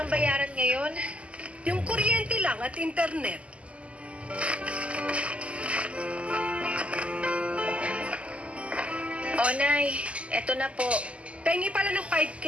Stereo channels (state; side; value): late; left; 0.059 ms